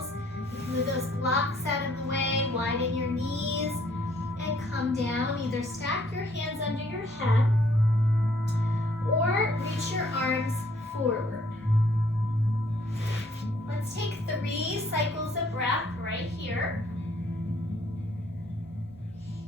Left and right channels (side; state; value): both; normal; correlation 0.64